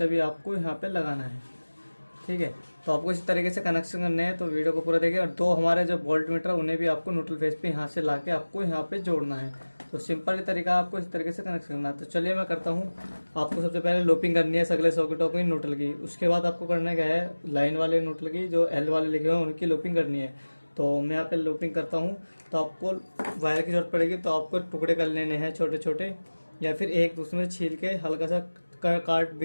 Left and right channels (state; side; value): inverted; both; correlation -1.00